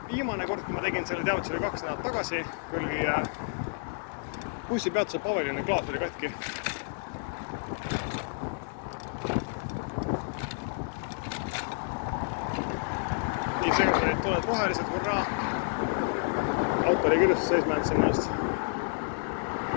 Viimane kord, kui ma tegin selle teavituse, oli 2 nädalat tagasi, kui oli bussipeatuse paviljoni klaas oli katki. Nii seega tuled rohelised, hurraa. Auto oli kirjustus seisma jäänud sinna just.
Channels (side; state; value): right; silent; digital silence